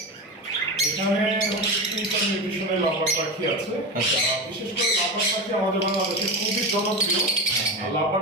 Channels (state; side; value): normal; both; correlation 0.21